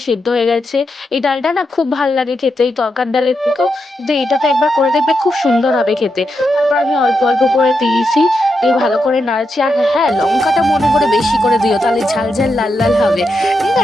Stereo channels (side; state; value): both; normal; correlation 0.85